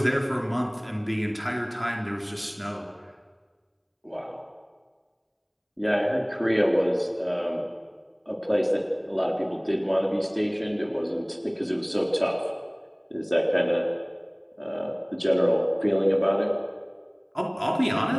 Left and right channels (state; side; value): identical; both; correlation 1.00